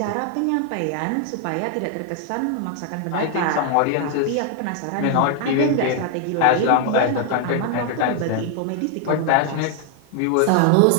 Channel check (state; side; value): different; both; correlation 0.00